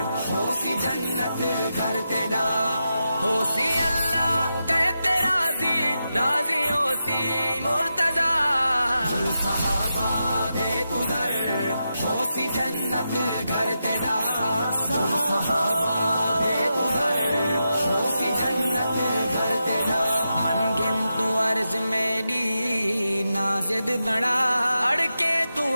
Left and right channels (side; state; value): both; inverted; correlation -0.88